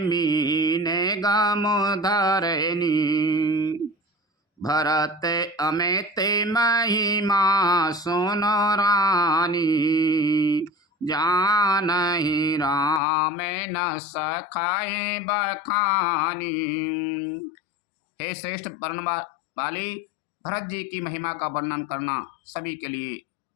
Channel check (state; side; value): drops out; right; at 13.0 s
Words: गामो धारेनी भरत अमेते महिमा सुनो रानी जानहि राम न सखाए बखानी। हे श्रेष्ठ वर्ण वाली, भरत जी की महिमा का वर्णन करना सभी के लिए